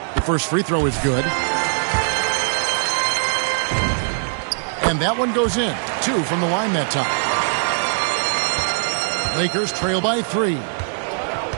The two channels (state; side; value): silent; left; digital silence